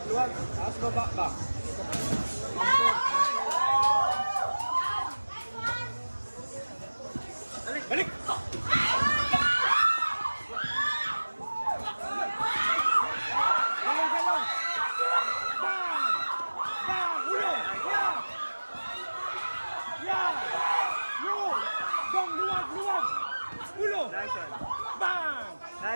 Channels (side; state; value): both; inverted; correlation -1.00